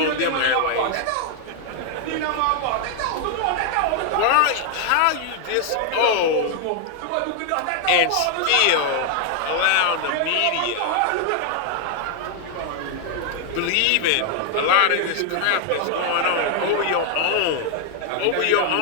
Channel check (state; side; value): different; both; correlation 0.00